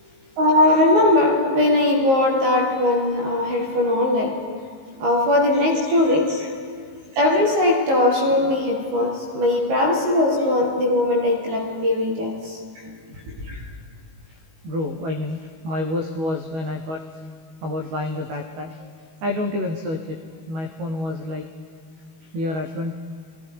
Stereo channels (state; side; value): late; left; 19 ms